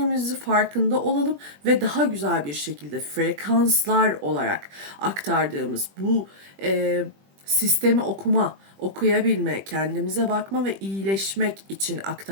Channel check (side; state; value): left; late; 21 ms